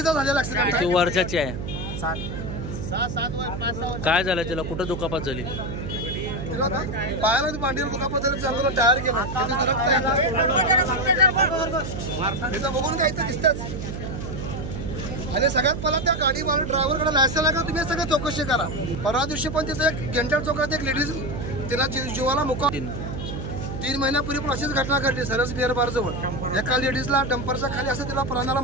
झालेला ऍक्सिडेंट आहे. वर्षाची आहे. काय झालं त्याला? कुठं दुखापत झाली? पायाला मांडीवर दुखापत झाली, चांगलं टायर गेलं, बघून काय इथं दिसतच. आणि सगळ्यात पहिला त्या गाडी मारून ड्रायव्हरकडे लायसन आहे का तुम्ही सगळं चौकशी करा. परवा दिवशी पण तिथं एक गेंटाळ चौकात एक लेडीज तिला जीवाला मुका 3 महिन्यापूर्वी पण अशीच घटना घडली सरस बिअर बार जवळ. एका लेडीजला डंपरच्या खाली असं तिला प्राणाला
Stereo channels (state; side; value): noise; right; hum, 6 dB below the sound